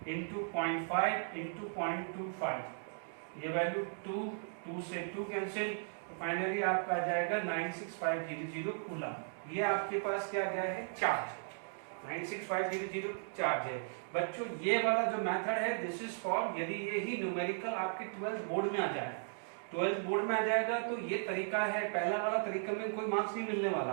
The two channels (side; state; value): left; silent; digital silence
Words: into 0.5 into 0.25, ये वैल्यू 2 से 2 कैंसिल, तो फाइनली आपका आ जाएगा 96500 कूलम। ये आपके पास क्या गया है चार्ज, 96500 चार्ज है। बच्चों ये वाला जो मेथड है दिस इज फॉर यदि यही न्यूमेरिकल आपके 12th बोर्ड में आ जाए, 12th बोर्ड में आ जाएगा तो ये तरीका है। पहला वाला तरीका में कोई मार्क्स नहीं मिलने